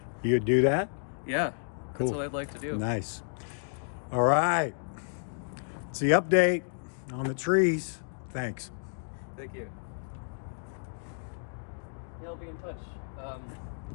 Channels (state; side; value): silent; right; digital silence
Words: You'd do that? Yeah, Cool. that's what I'd like to do. Nice. All right. It's the update on the trees. Thanks. Thank you. Yeah, I'll be in touch.